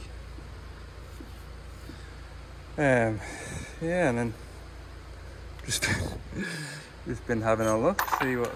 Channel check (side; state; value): both; identical; correlation 1.00